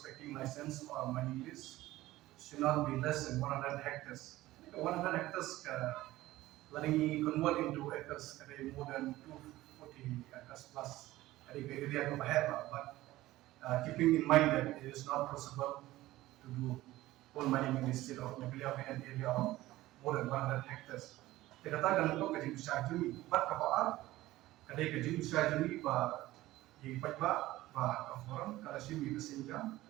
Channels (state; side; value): quieter; left; 16.7 dB